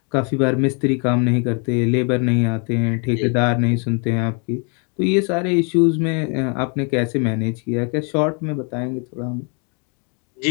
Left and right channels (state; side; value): quieter; right; 37.1 dB